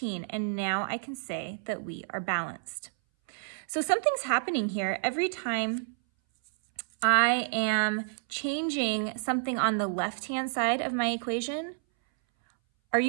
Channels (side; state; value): left; silent; 58 dB below the other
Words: And now I can say that we are balanced. So something's happening here. Every time I am changing something on the left-hand side of my equation, are